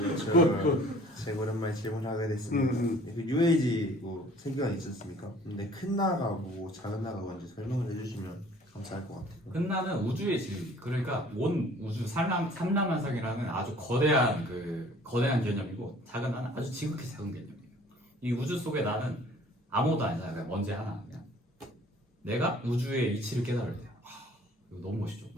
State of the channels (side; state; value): both; normal; correlation 0.52